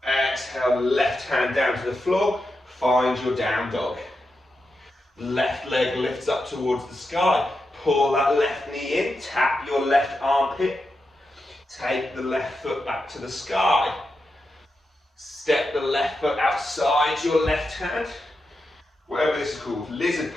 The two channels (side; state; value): both; normal; correlation 0.88